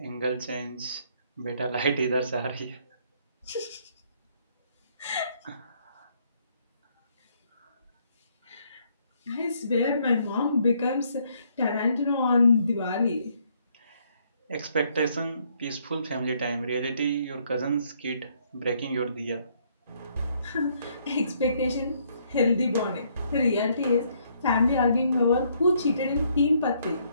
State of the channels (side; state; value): both; inverted; correlation -0.69